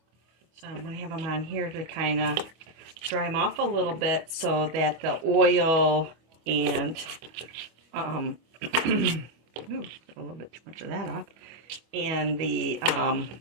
So I'm going to have them on here to kind of dry them off a little bit so that the oil and ooh, a little bit too much of that off. And the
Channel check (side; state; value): left; late; 25 ms